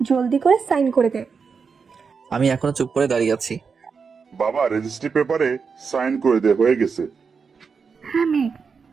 জলদি করে সাইন করে দে। আমি এখনো চুপ করে দাঁড়িয়ে আছি। বাবা রেজিস্ট্রি পেপারে সাইন করে দে, হয়ে গেছে। হ্যাঁ মেয়ে,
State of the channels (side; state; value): left; quieter; 5.5 dB